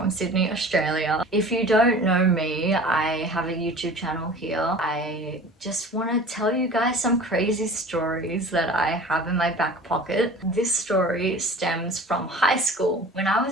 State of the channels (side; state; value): both; normal; correlation 0.41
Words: Sydney, Australia. If you don't know me, I have a YouTube channel here. I just want to tell you guys some crazy stories that I have in my back pocket. This story stems from high school. When I was